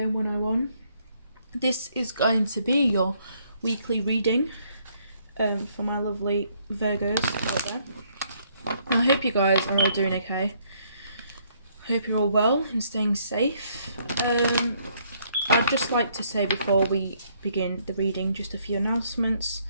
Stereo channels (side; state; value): both; inverted; correlation -0.68